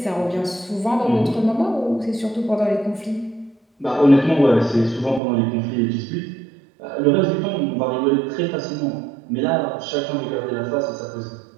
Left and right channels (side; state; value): left; drops out; at 5.2 s